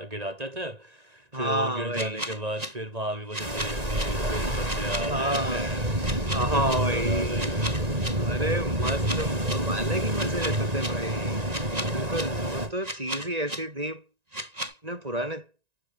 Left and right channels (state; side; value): late; left; 1.9 ms